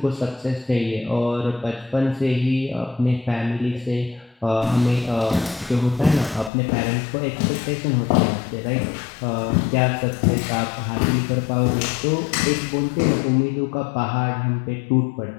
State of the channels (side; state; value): right; drops out; at 6.5 s